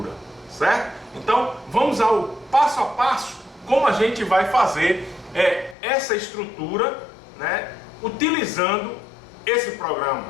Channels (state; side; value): drops out; right; at 5.8 s